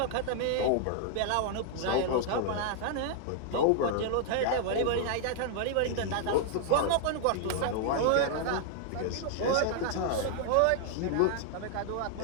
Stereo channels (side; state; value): both; different; correlation 0.00